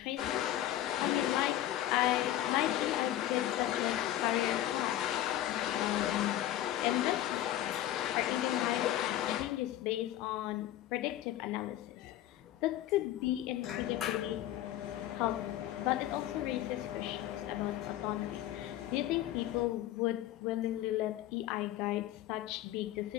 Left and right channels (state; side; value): quieter; right; 13.4 dB